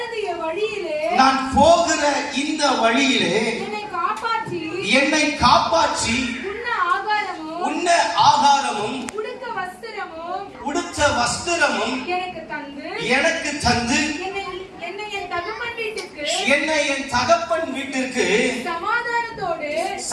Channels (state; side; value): identical; both; correlation 1.00